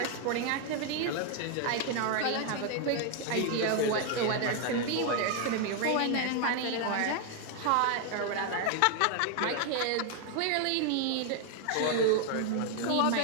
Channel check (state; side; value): different; both; correlation 0.00